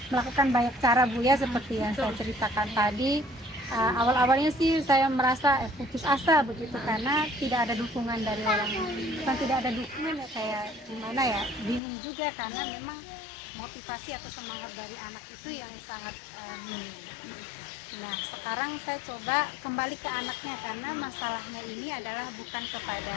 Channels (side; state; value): right; drops out; at 11.8 s